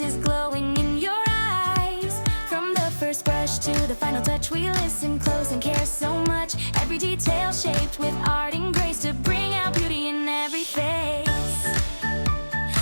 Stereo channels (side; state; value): both; inverted; correlation -1.00